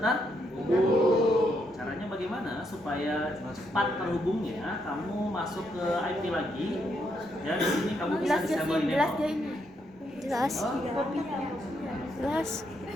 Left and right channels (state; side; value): normal; both; correlation 0.77